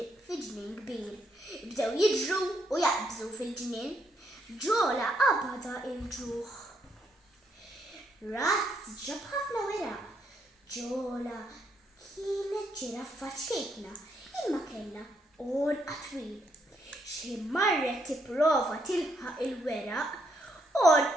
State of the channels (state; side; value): normal; both; correlation 0.75